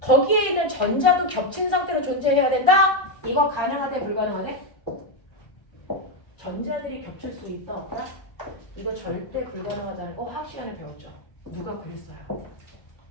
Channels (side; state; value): right; late; 1.3 ms